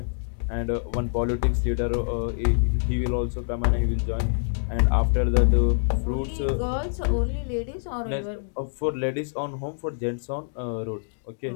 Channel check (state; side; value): silent; right; digital silence